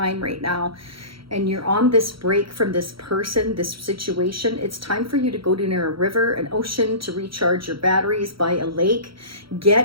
right now, and you're on this break from this person, this situation, it's time for you to go to near a river, an ocean, to recharge your batteries, by a lake.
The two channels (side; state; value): left; late; 0.75 ms